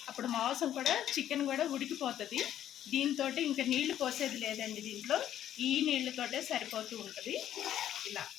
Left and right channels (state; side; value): quieter; right; 11.2 dB